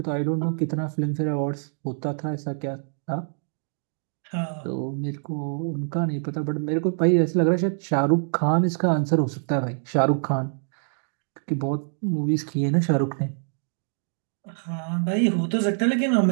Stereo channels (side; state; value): left; silent; digital silence